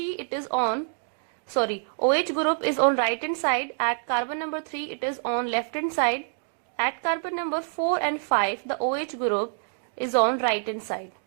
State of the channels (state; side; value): silent; left; digital silence